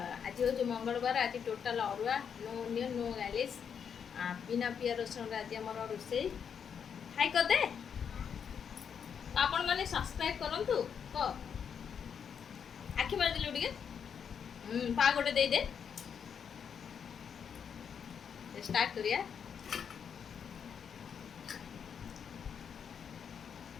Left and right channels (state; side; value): quieter; right; 7.3 dB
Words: आज हूँ मंगलवार। आज टोटाल अरुआ, नो अनियन, नो गार्लिश, बिना पिया रसुण आज आम रोसे। हाई करदे आपण मैंने सब्सक्राइब करंतु। क आखि मार दिलु टिके पा गोटे दे दे। स्टार्ट करिया।